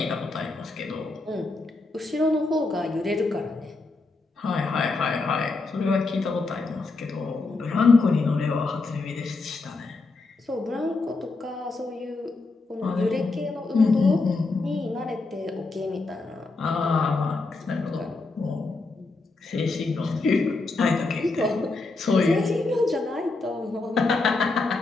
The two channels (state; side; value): quieter; right; 3.6 dB